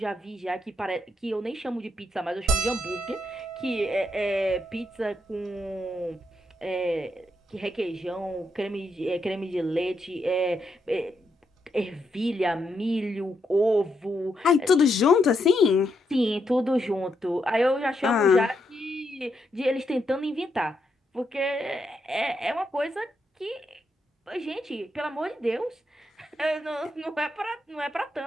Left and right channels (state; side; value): normal; both; correlation 0.80